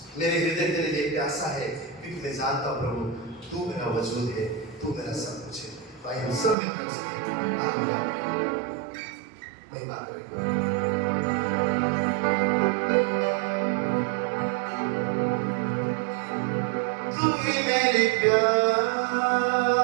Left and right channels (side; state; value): left; drops out; at 6.6 s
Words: मेरे हृदय तेरे लिए प्यासा है, क्योंकि मैं जानता हूँ प्रभु तू मेरा वजूद है, तू मेरा सब कुछ है। तो आइए हम सब मिलकर उसकी महिमा करें। तू ही मेरी